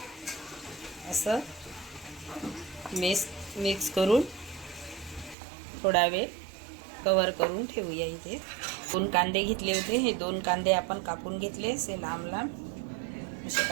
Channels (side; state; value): left; drops out; at 5.4 s